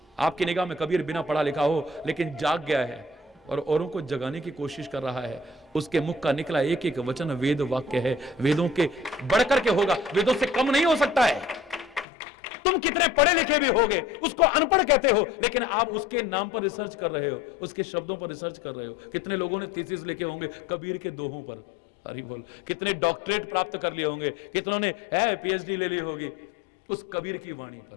आपकी निगाह में कबीर बिना पढ़ा लिखा हो लेकिन जाग गया है और औरों को जगाने की कोशिश कर रहा है। उसके मुख का निकला एक एक वचन वेद वाक्य है। वेदों के बढ़कर के होगा, वेदों से कम नहीं हो सकता है। तुम कितने पढ़े लिखे भी होगे, उसको अनपढ़ कहते हो, लेकिन आप उसके नाम पर रिसर्च कर रहे हो, उसके शब्दों पर रिसर्च कर रहे हो। कितने लोगों ने थीसिस लिखे होंगे कबीर के दोहों पर। हरि बोल। कितने डॉक्टरेट प्राप्त कर लिए होंगे, कितनों ने पीएचडी ले ली होगी उस कबीर की वाणी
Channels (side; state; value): right; drops out; at 12.1 s